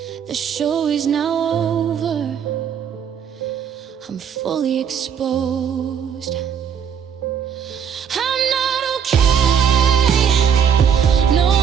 the show is now over, I'm fully exposed. I'm not okay, no,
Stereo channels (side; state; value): left; quieter; 7.7 dB